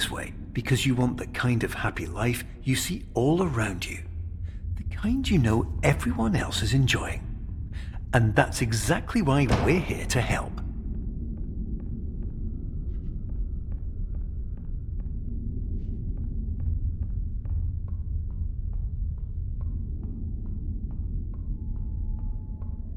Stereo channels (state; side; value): identical; both; correlation 1.00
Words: way because you want the kind of happy life you see all around you, the kind you know everyone else is enjoying. And that's exactly why we're here to help.